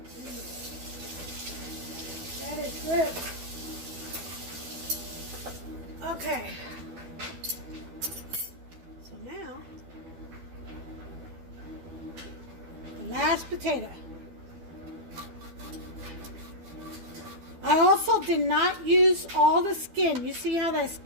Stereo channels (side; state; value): left; late; 12 ms